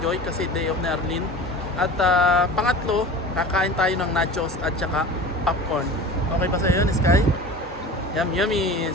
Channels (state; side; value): normal; both; correlation 0.36